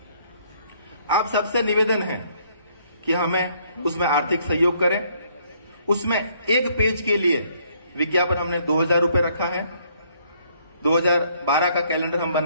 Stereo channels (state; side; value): inverted; both; correlation -0.66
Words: आप सबसे निवेदन है कि हमें उसमें आर्थिक सहयोग करें। उसमें एक पेज के लिए विज्ञापन हमने 2000 रुपए रखा है। 2012 का कैलेंडर हम